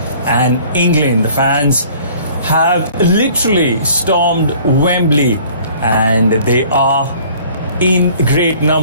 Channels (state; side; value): inverted; both; correlation -0.52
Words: and England. The fans have literally stormed Wembley and they are in great